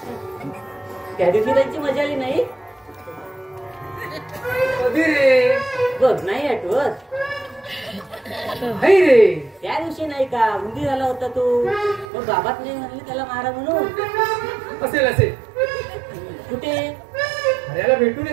त्या दिवशी त्यांची मजा आली नाही. कधी रे? बघ नाही आठवत. नाही रे. त्या दिवशी नाही का उंदी झाला होता तो, मग बाबात नाही म्हणले त्याला मारा म्हणून. असेल असेल. कुठे? हऱ्याला भेटून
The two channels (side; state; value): left; drops out; at 12.1 s